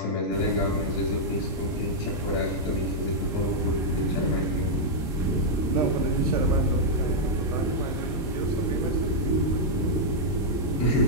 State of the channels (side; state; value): both; normal; correlation -0.05